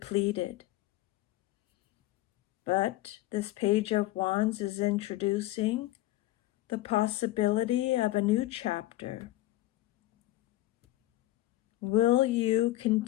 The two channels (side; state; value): right; quieter; 16.7 dB